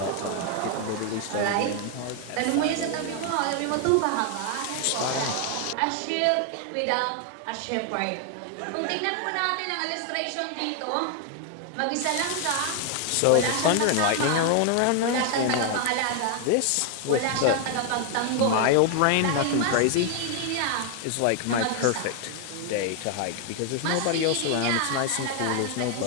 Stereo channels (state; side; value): different; both; correlation 0.00